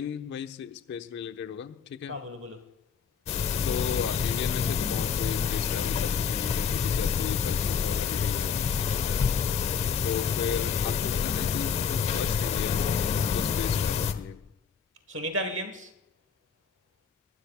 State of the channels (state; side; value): quieter; right; 6.7 dB